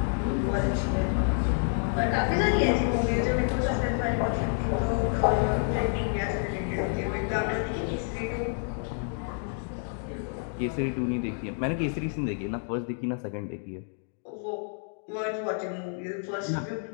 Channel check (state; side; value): silent; right; 57 dB below the other